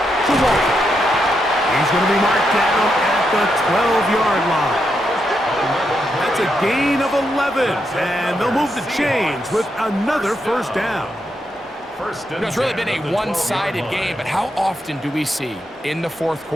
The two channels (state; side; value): normal; both; correlation 0.82